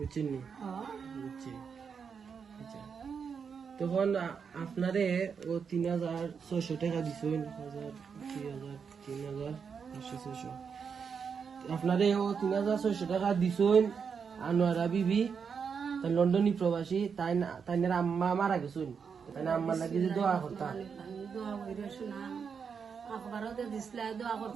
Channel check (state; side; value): quieter; left; 6.3 dB